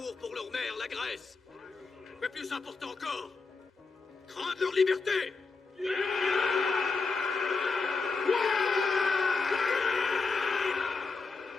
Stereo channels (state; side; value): quieter; right; 4.3 dB